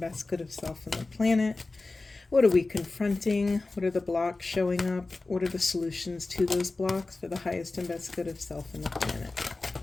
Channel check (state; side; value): quieter; right; 3.4 dB